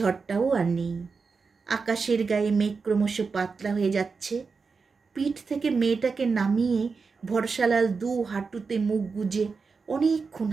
আর নেই। আকাশের গায়ে মেঘ ক্রমশ পাতলা হয়ে যাচ্ছে। পিঠ থেকে মেয়েটাকে নামিয়ে ভরসালাল 2 হাঁটুতে মুখ গুজে অনেকক্ষণ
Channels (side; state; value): left; quieter; 4.9 dB